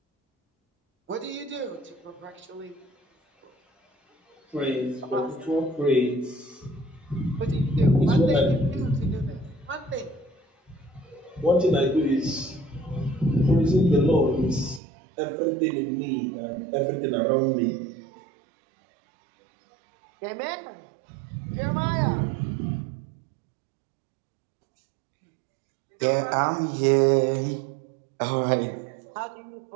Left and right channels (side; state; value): left; drops out; at 14.8 s